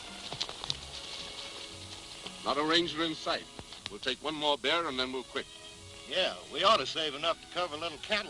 Not a ranger in sight. We'll take one more bear and then we'll quit. Yeah, we ought to save enough to cover a little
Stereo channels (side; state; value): both; identical; correlation 1.00